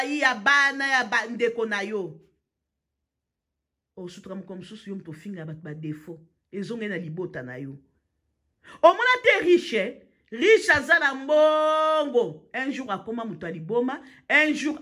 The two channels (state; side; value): identical; both; correlation 1.00